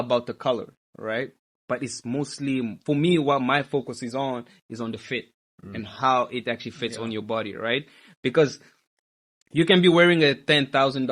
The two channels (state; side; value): identical; both; correlation 1.00